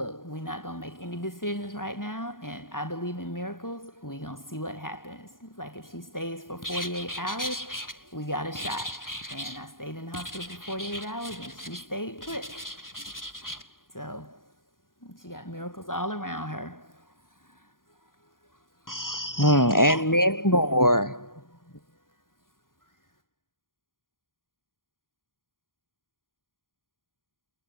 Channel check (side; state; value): right; late; 0.90 ms